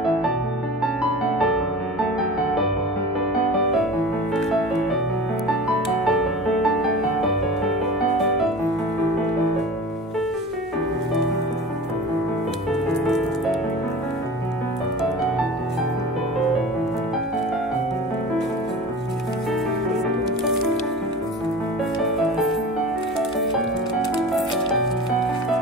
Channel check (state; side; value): normal; both; correlation 0.37